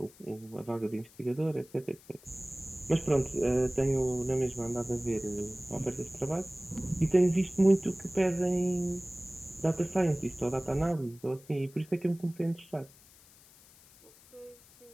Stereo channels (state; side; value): noise; left; hiss, 25 dB below the sound